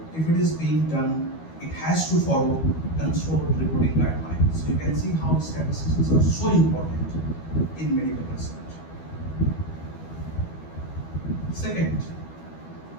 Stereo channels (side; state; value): right; late; 12 ms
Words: if it is being done, it has to follow consort reporting guidelines. So you can see how statisticians are so important in medical research. Second,